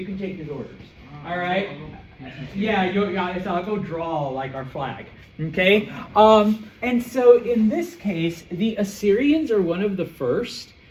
can take his orders. All right. Yeah, I'll go draw like our flag. Okay. And so in this case, the Assyrians are one of the first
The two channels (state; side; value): identical; both; correlation 1.00